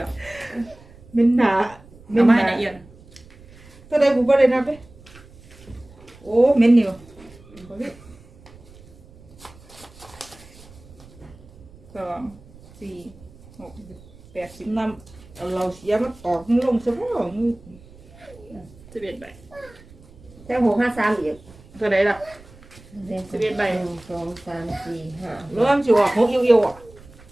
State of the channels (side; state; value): right; noise; rumble, 23 dB below the sound